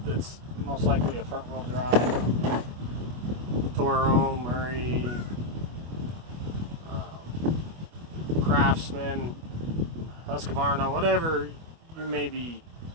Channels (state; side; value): late; left; 25 ms